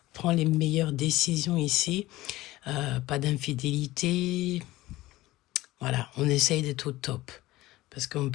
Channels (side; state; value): right; quieter; 17.7 dB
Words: prends les meilleures décisions ici. Pas d'infidélité. Voilà, on essaye d'être au top. Parce qu'on